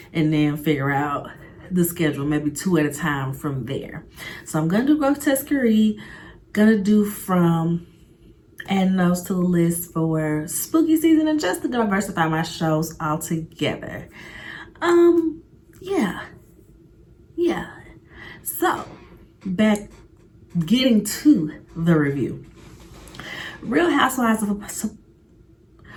and then figure out the schedule, maybe 2 at a time from there. So I'm gonna do Grotesquerie, gonna do From, adding those to the list for spooky season, and just to diversify my shows altogether. Yeah. So getting to the review. Real Housewives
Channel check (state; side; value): identical; both; correlation 1.00